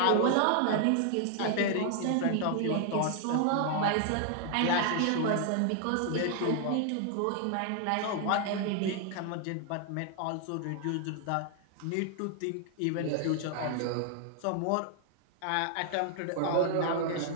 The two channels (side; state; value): both; different; correlation 0.00